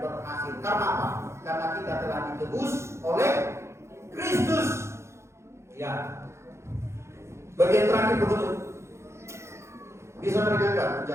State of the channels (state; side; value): late; left; 0.13 ms